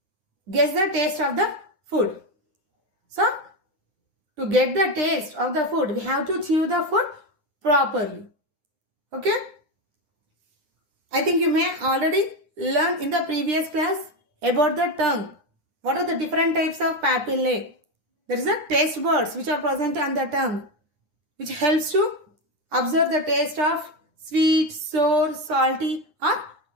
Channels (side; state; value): left; late; 9.7 ms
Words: guess the taste of the food. So, to get the taste of the food, we have to chew the food properly. Okay? I think you may already learn in the previous class about the tongue. What are the different types of papillae? There is a taste buds which are present on the tongue, which helps to observe the taste of sweet, sour, salty or